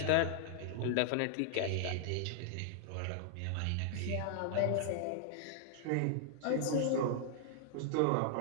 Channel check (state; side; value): different; both; correlation -0.01